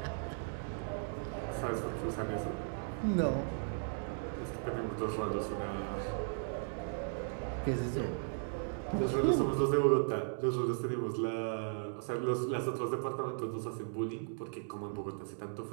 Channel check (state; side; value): silent; left; digital silence